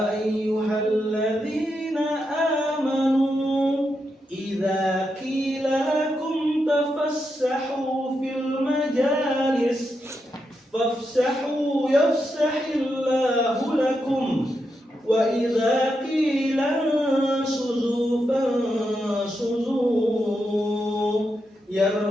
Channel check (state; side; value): normal; both; correlation 0.85